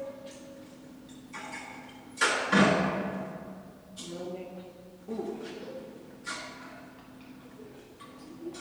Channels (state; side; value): identical; both; correlation 1.00